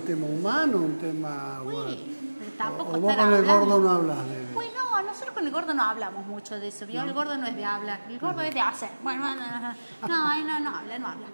tema humano, un tema... Sí, pero tampoco o vos con el gordo no hablas de... Pues no, nosotros con el gordo no hablamos mucho de eso, ¿vio? El gordo no es de hablar, el gordo es de hacer. Bueno, no habla. Bueno.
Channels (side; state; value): both; inverted; correlation -1.00